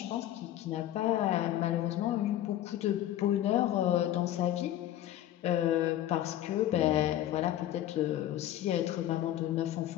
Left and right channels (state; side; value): quieter; right; 12.8 dB